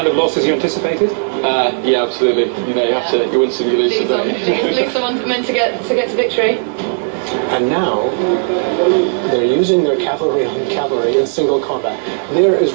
of losses you anticipated? Yeah, absolutely. You know, you win some, you lose some. Lose someone's meant to get to victory. And now, they're using their cavalry on cavalry in single combat. There is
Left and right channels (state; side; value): silent; left; 62 dB below the other